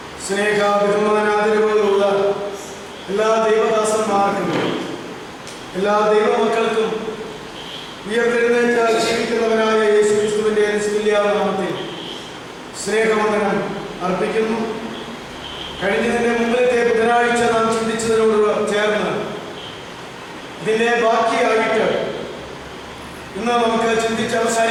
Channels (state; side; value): identical; both; correlation 1.00